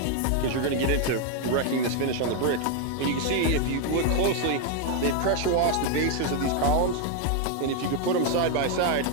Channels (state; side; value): different; both; correlation 0.01